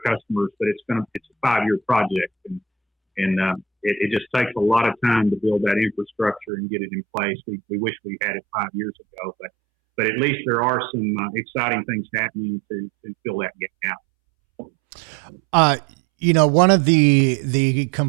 customers, but it's a 5-year project, and it just takes a lot of time to build that infrastructure and get it in place. We wish we had it 5 years ago, but at least there are some exciting things happening to fill that gap. One of the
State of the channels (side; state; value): left; drops out; at 6.5 s